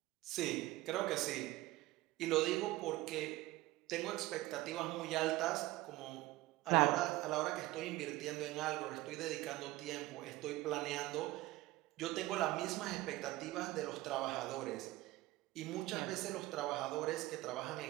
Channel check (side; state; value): left; quieter; 18.2 dB